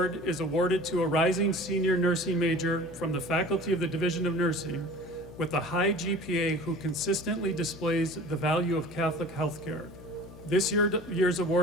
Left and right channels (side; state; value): left; noise; hum, 17 dB below the sound